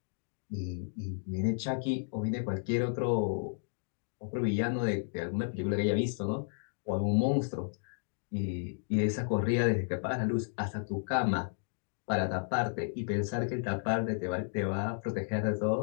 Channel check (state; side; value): silent; right; digital silence